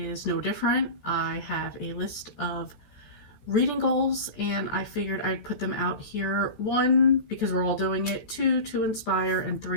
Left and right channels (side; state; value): right; late; 14 ms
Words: no different. I have a list of reading goals, and I figured I'd put them out here. 1, because we're all doing it, 2, to inspire, and